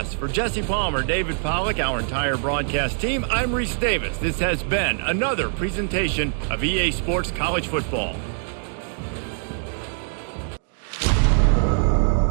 For Jesse Palmer, David Pollack, our entire broadcast team, I'm Reese Davis. This has been another presentation of EA Sports College Football.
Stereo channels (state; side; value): silent; left; digital silence